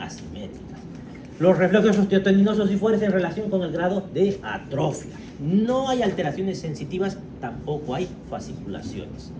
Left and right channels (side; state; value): both; identical; correlation 1.00